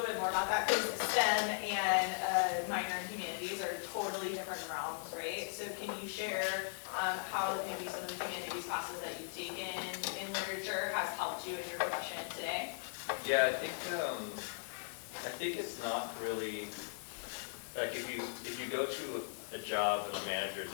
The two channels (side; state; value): right; silent; digital silence